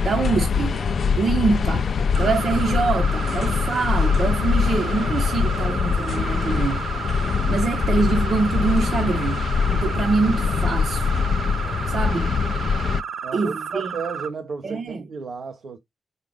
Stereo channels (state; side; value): normal; both; correlation 0.78